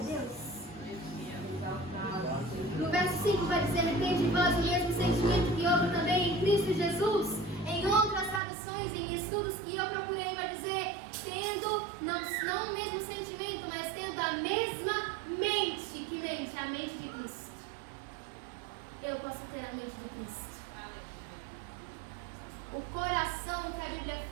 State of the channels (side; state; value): left; drops out; at 8.4 s